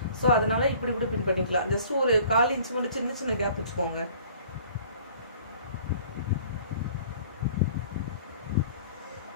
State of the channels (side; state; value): both; inverted; correlation -0.51